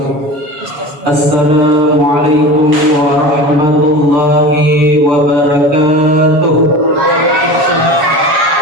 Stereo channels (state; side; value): late; left; 7.2 ms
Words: Assalamualaikum warahmatullahi wabarakatuh.